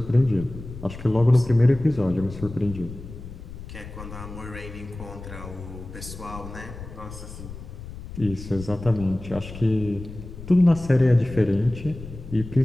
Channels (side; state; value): left; noise; rumble, 13 dB below the sound